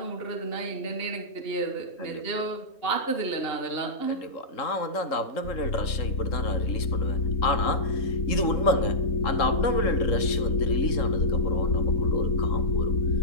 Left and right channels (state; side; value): late; right; 3.7 ms